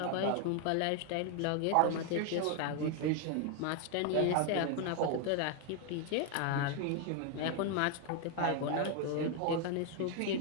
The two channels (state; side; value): different; both; correlation 0.01